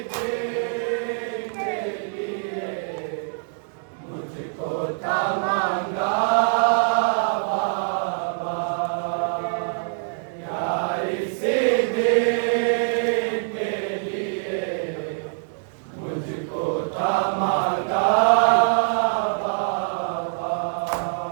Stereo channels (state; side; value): silent; left; digital silence